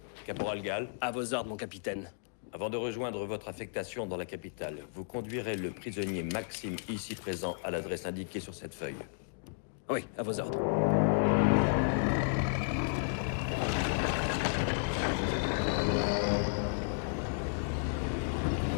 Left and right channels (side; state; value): right; silent; digital silence